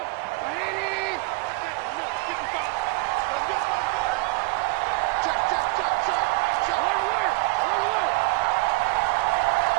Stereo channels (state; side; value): quieter; left; 24.4 dB